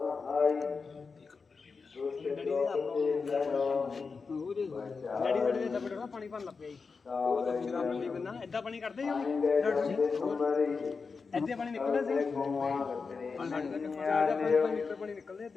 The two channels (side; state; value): right; quieter; 4.9 dB